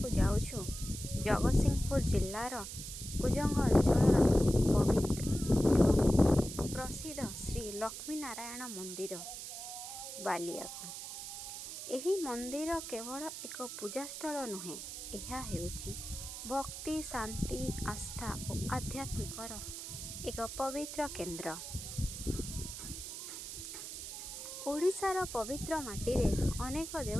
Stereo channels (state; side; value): noise; right; hiss, 8 dB below the sound